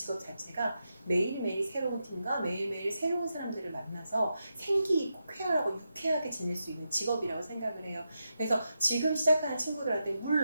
자체가 매일매일 새로운 팀과 매일매일 새로운 사람들을 만나서 생기 있고 쾌활하고 유쾌하게 지낼 수 있는 직업이라고 생각을 해요. 그래서 지금 시작하는 친구들한테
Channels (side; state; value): both; inverted; correlation -0.86